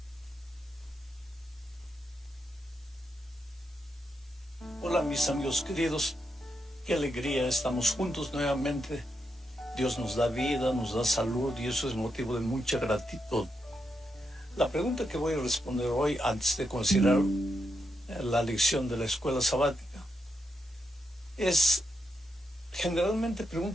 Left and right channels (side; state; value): both; normal; correlation 0.83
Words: Hola mis amigos queridos, qué alegría, estamos juntos nuevamente. Dios nos da vida, nos da salud y eso es motivo de mucha gratitud. La pregunta que voy a responder hoy, antes de considerar la lección de la escuela sabática, es generalmente